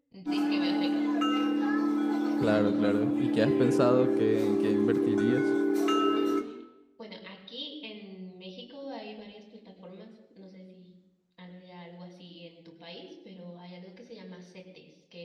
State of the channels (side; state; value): both; identical; correlation 1.00